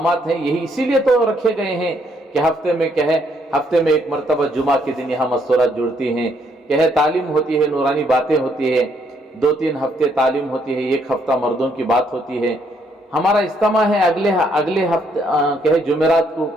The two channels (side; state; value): both; normal; correlation 0.71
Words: ہیں یہی اسی لیے تو رکھے گئے ہیں کہ ہفتے میں ایک مرتبہ جمعہ کے دن یہاں مستورات جڑتی ہیں، تعلیم ہوتی ہے، نورانی باتیں ہوتی ہے، 2-3 ہفتے تعلیم ہوتی ہے، 1 ہفتہ مردوں کی بات ہوتی ہے۔ ہمارا اجتماع ہے اگلے ہفتے جمعرات کو